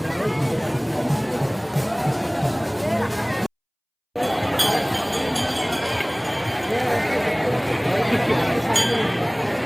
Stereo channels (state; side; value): identical; both; correlation 1.00